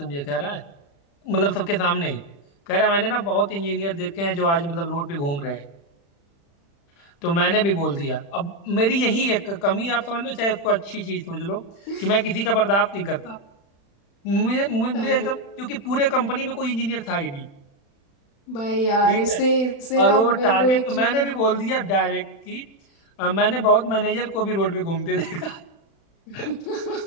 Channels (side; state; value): right; late; 35 ms